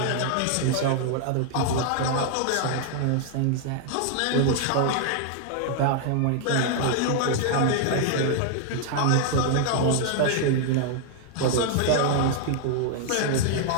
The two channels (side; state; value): both; different; correlation 0.00